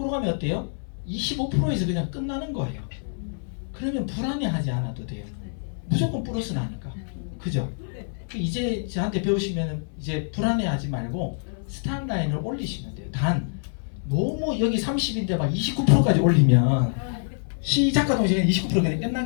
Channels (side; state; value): right; silent; 61 dB below the other